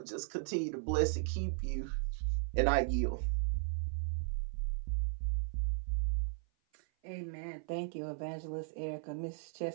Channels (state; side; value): silent; left; 53 dB below the other